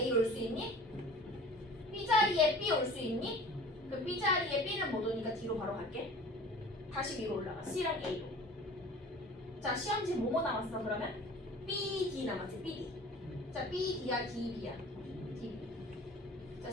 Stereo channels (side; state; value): both; normal; correlation 0.43